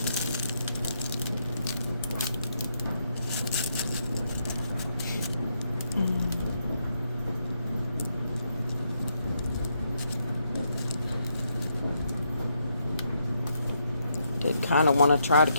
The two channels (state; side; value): inverted; both; correlation -0.78